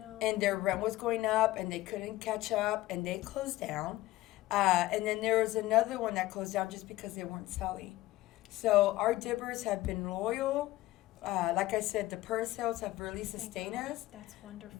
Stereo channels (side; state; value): right; quieter; 17.0 dB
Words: And their rent was going up and they couldn't catch up and they closed down. And then there was another one that closed down just because they weren't selling. So our dibbers have been loyal. Like I said, the purse sales have really Thank sustained God. us. That's wonderful.